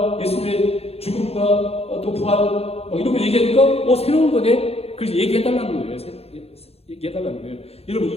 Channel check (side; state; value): right; late; 0.29 ms